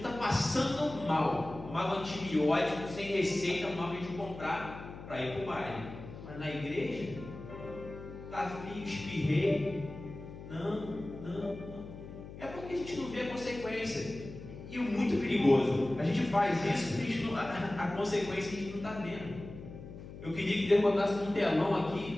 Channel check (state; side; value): noise; left; hum, 13 dB below the sound